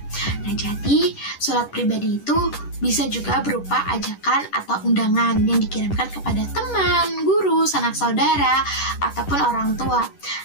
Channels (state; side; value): late; right; 10 ms